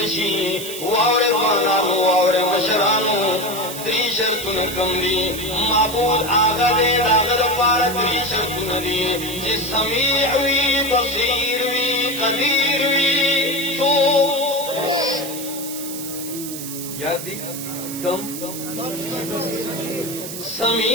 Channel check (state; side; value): noise; right; hiss, 9 dB below the sound